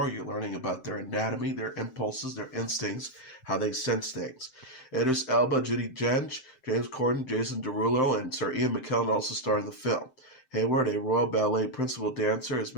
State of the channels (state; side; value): late; right; 7.7 ms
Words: you're learning about their anatomy, their impulses, their instincts, how they sense things. Idris Elba, Judi Dench, James Corden, Jason Derulo, and Sir Ian McKellen also star in the film. Hayward, a Royal Ballet principal dancer, is